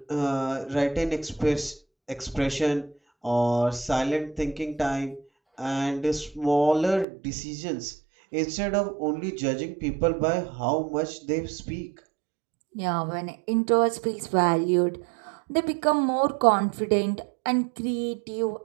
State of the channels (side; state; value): left; drops out; at 7.1 s